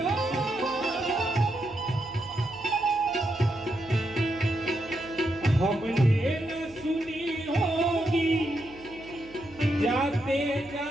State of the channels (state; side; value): noise; right; hum, 22 dB below the sound